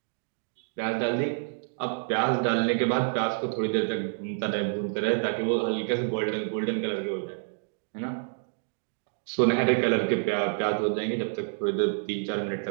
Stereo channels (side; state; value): left; silent; digital silence